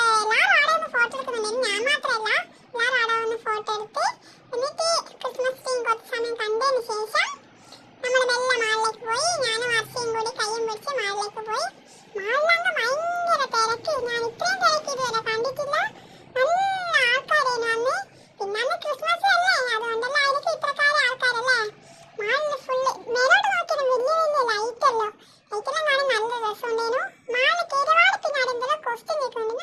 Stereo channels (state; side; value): identical; both; correlation 1.00